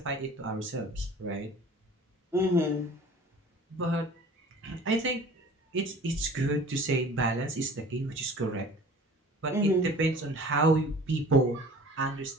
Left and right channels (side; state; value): both; normal; correlation 0.45